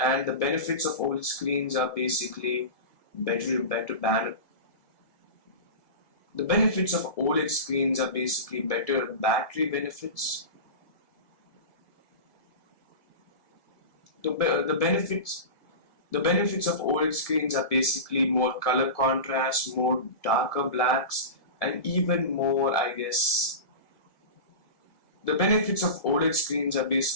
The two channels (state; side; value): late; right; 1.7 ms